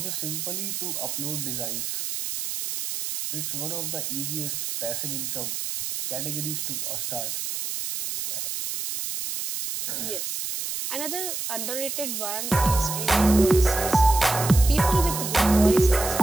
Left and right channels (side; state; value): right; noise; hiss, 4 dB below the sound